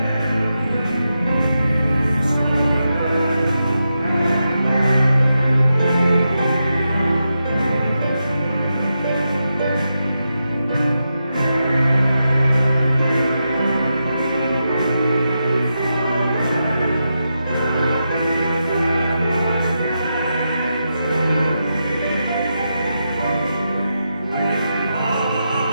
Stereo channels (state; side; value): inverted; both; correlation -0.87